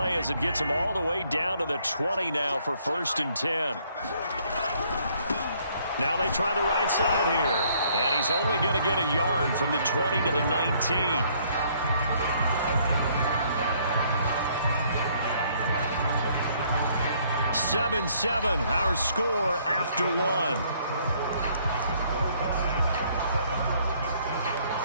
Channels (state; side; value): inverted; both; correlation -0.65